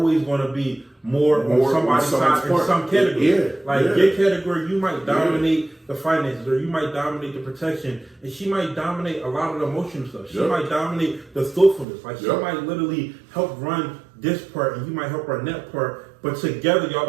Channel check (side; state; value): left; drops out; at 11.9 s